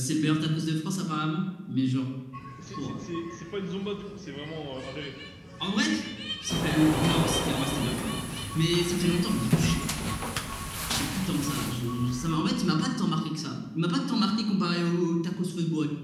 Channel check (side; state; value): both; identical; correlation 1.00